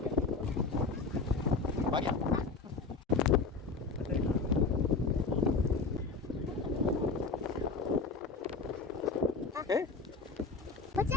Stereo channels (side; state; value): right; quieter; 4.3 dB